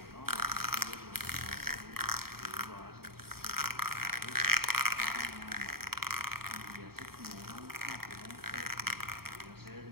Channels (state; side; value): late; left; 0.94 ms